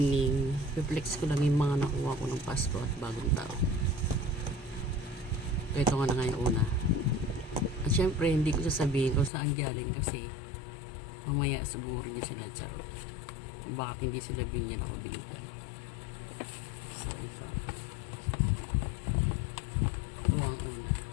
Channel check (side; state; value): right; drops out; at 9.3 s